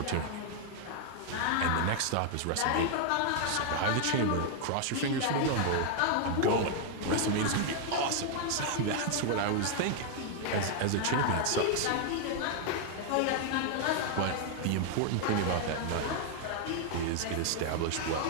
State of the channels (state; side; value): different; both; correlation 0.00